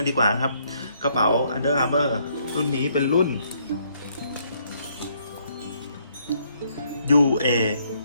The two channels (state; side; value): inverted; both; correlation -0.69